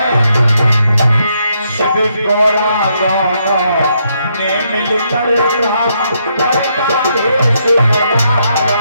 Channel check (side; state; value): both; inverted; correlation -0.76